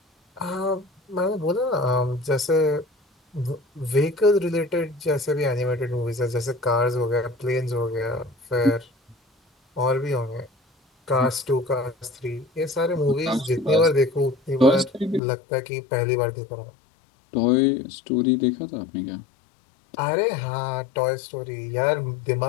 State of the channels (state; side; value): drops out; right; at 15.2 s